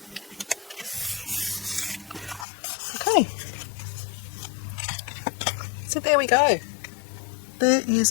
Okay. So there we go. There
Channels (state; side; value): drops out; right; at 2.5 s